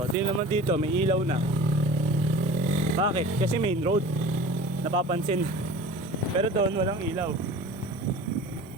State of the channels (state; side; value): normal; both; correlation 0.41